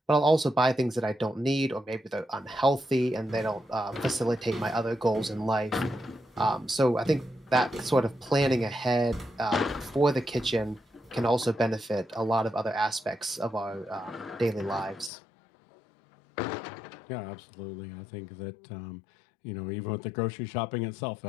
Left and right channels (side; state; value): right; drops out; at 15.1 s